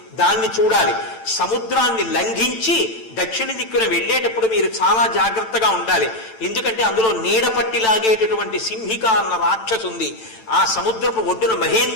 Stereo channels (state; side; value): late; right; 9.0 ms